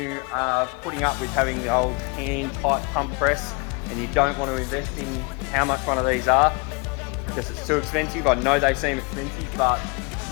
are putting up with having the old hand type pump press and you don't want to invest in how much one of these are because it's too expensive, I know they seem expensive, but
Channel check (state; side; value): quieter; right; 30.4 dB